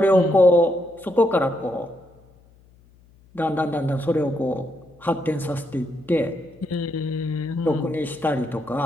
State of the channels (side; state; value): left; noise; hum, 29 dB below the sound